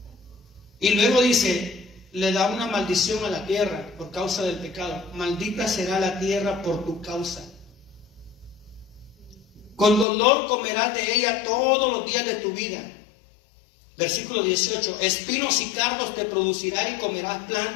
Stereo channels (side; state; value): right; drops out; at 10.1 s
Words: Y luego dice, le da una maldición a la tierra por causa del pecado. Maldita será la tierra por tu causa. Con dolor comerás de ella todos los días de tu vida. Versículo 18, espinos y cardos te producirá y comerás